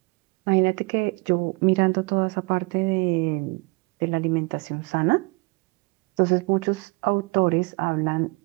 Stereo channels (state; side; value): quieter; left; 28.6 dB